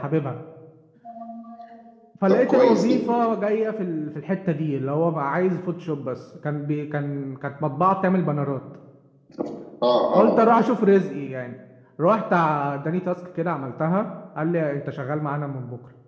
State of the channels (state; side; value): identical; both; correlation 1.00